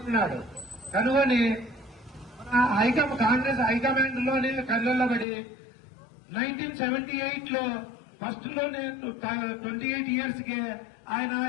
కనుగొని కాంగ్రెస్ హైకమాండ్ లోనే కళ్ళబడి 1978 లో ఫస్ట్ లోనే 28 ఇయర్స్ కే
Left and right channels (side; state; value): right; drops out; at 5.2 s